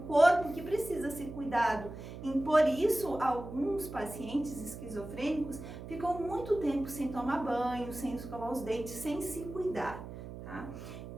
corpo que precisa ser cuidado. E por isso, alguns pacientes esquizofrênicos ficam muito tempo sem tomar banho, sem escovar os dentes, sem se cuidar. Tá?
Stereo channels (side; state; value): right; noise; hum, 11 dB below the sound